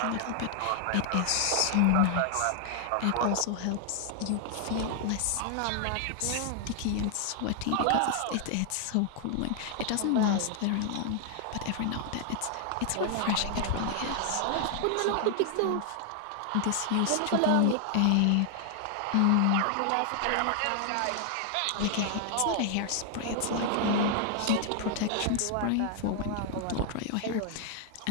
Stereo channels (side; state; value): both; different; correlation 0.00